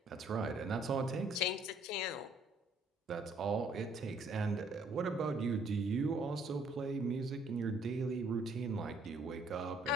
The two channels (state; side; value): normal; both; correlation 0.63